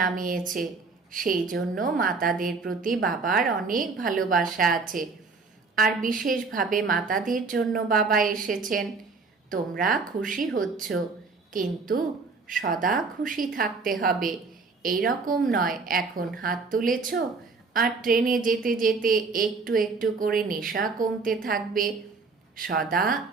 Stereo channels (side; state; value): left; quieter; 4.4 dB